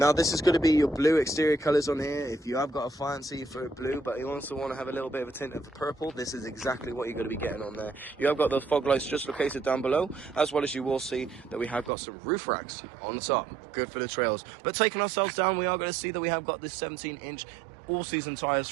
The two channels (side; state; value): left; drops out; at 11.9 s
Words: this is going to be your blue exterior colours on here. If you have got a fancy for blue, but you also want to have a little bit of a tint of the purple, this is exactly what you're going to be getting on there. You have got those fog lights just located down below, as well as you will see that we have got some roof racks on the top. Good for the trails. But taking ourselves down, we are going to see that we have got this 17-inch all-season tyres